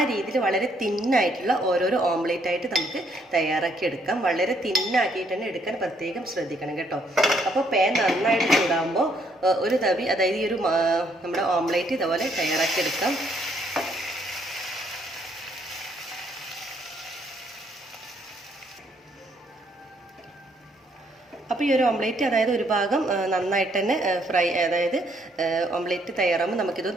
രീതിയിൽ വളരെ തിന്നായിട്ടുള്ള ഓരോരോ ഓംലേറ്റ് ആയിട്ട് നമുക്ക് തയ്യാറാക്കി എടുക്കാം. വളരെ തിന്നാക്കിയിട്ട് തന്നെ എടുക്കാൻ പ്രത്യേകം ശ്രദ്ധിക്കണം കേട്ടോ. അപ്പോൾ പാൻ നന്നായിട്ട് ചൂടാകുമ്പോൾ ഒരു തവി, അതായത് ഈ ഒരു നമ്മുടെ ഓംലേറ്റ് ഇതുപോലെ തയ്യാറാക്കി എടുക്കാം. അപ്പോൾ ഈ ഒരു ഓംലേറ്റ്, അതായത് ഒരു ഭാഗം നന്നായിട്ട് തന്നെ അതായത് ഓംലേറ്റ് തയ്യാറാകുമ്പോൾ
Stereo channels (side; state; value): both; normal; correlation 0.69